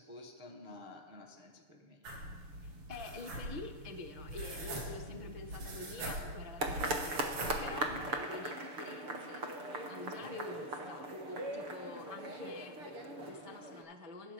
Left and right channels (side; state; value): left; late; 6.9 ms